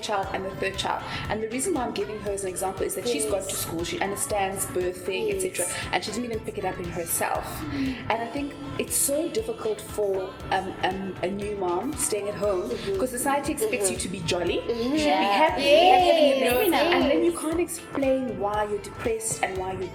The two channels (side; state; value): both; identical; correlation 1.00